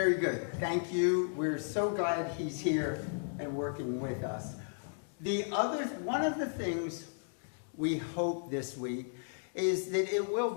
good. Thank you. We're so glad he's here and working with us. One of the things we hope this week is that it will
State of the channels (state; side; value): silent; right; digital silence